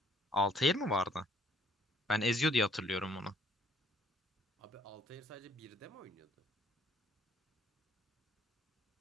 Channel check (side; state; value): both; normal; correlation 0.62